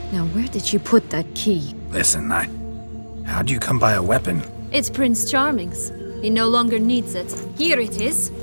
Now, where did you put that key? Listen, how'd you come by a weapon? It's Prince Charming's. He no longer needs it. Here it is.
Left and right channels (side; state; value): both; inverted; correlation -1.00